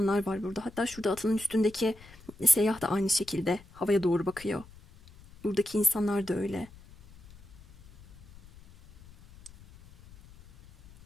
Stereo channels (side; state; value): left; noise; rumble, 21 dB below the sound